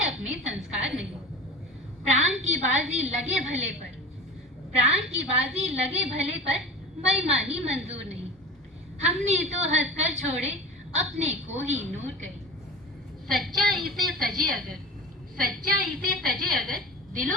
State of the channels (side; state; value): both; normal; correlation 0.34